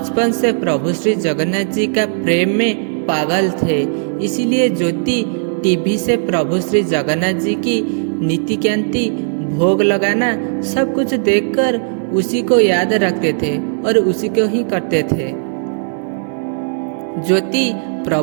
से प्रभु श्री जगन्नाथ जी का प्रेम में पागल थे, इसीलिए ज्योति टीवी से प्रभु श्री जगन्नाथ जी की नीति कांति भोग लगाना सब कुछ देखकर उसी को याद रखते थे और उसी को ही करते थे। ज्योति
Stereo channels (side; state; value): left; silent; digital silence